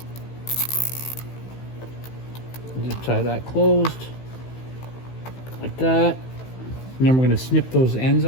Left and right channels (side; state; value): right; late; 15 ms